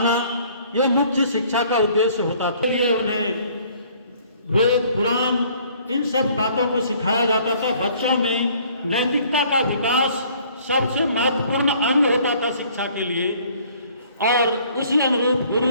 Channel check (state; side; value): inverted; both; correlation -0.58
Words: यह मुख्य शिक्षा का उद्देश्य होता था। ये उन्हें वेद पुराण इन सब बातों को सिखाया जाता था। बच्चों में नैतिकता का विकास सबसे महत्वपूर्ण अंग होता था शिक्षा के लिए। और उसी अनुरूप